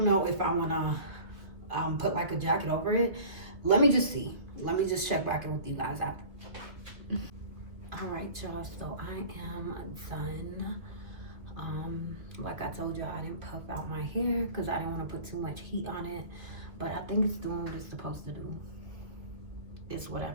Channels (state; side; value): late; left; 2.4 ms